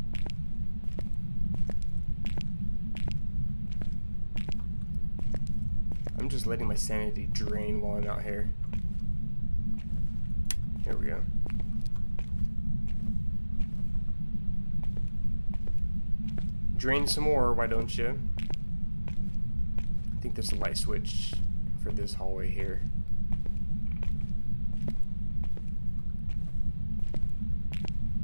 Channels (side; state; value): both; inverted; correlation -1.00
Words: I'm just letting my sanity drain while I'm out here. Here we go. Drain some more, why don't you? I think there's a light switch for this hallway here.